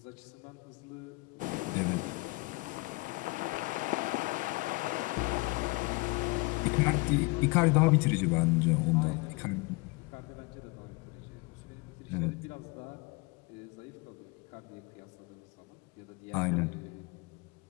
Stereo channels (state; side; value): quieter; right; 25.6 dB